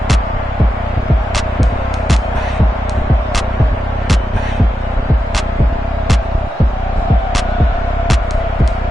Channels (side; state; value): both; normal; correlation 0.88